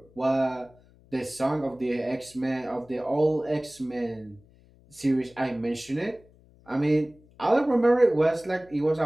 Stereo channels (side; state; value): left; noise; hum, 28 dB below the sound